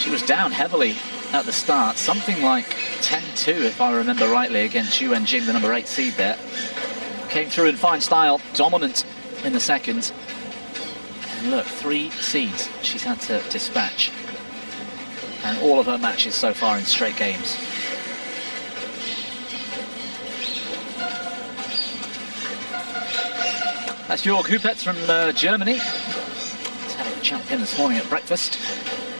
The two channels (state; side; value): inverted; both; correlation -1.00